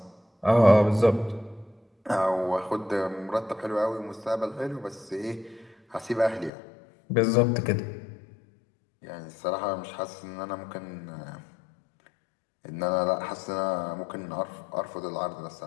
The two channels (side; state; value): right; drops out; at 6.5 s